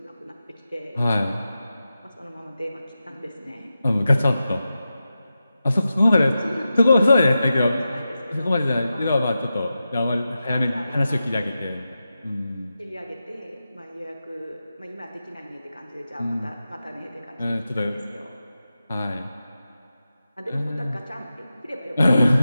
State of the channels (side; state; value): both; inverted; correlation -0.92